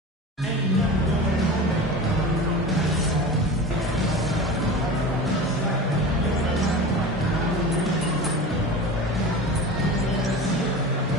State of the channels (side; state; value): both; normal; correlation 0.32